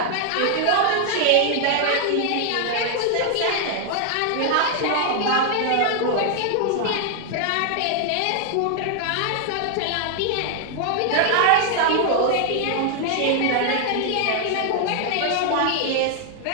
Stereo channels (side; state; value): both; different; correlation 0.00